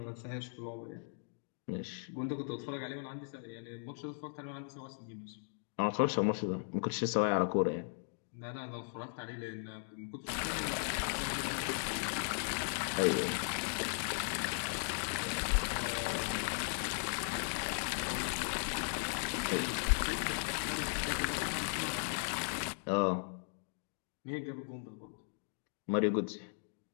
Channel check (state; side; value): silent; right; digital silence